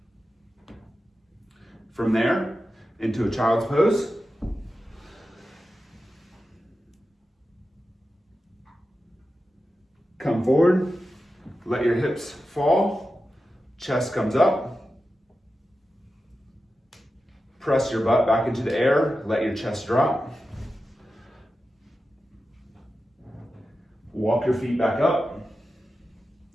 From there, into a child's pose. Come forward, let your hips fall, chest comes up. Press your butt back into the air, let your chest drop. Walk your feet back up.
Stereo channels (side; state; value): both; normal; correlation 0.92